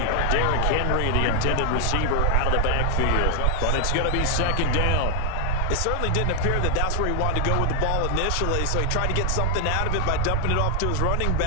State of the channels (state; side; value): different; both; correlation 0.00